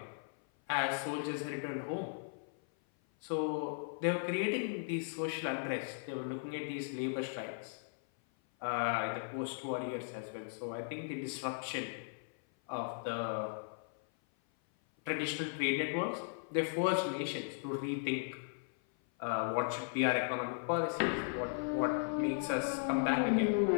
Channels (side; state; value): right; silent; 53 dB below the other